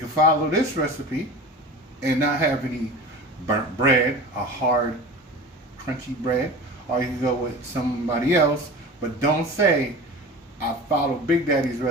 follow this recipe and not have any burnt bread, a hard, crunchy bread, or you can go with somebody else, but don't say, I followed Big Daddy's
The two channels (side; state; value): both; normal; correlation 0.35